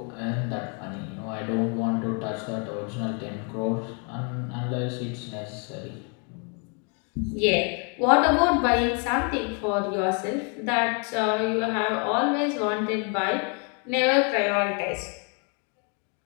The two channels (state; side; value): quieter; right; 37.4 dB